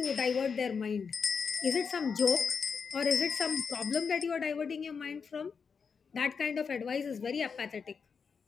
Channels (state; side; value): quieter; right; 5.9 dB